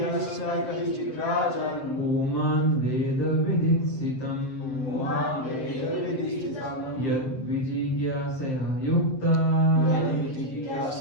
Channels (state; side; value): late; right; 7.7 ms